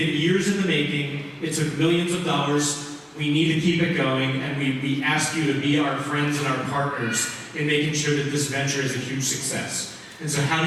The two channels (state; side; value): identical; both; correlation 1.00